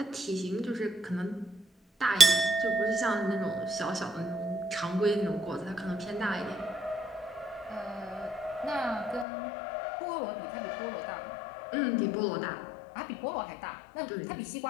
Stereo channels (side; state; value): right; drops out; at 9.2 s